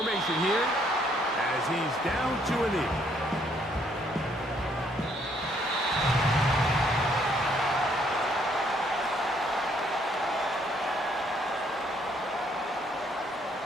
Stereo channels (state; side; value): normal; both; correlation 0.68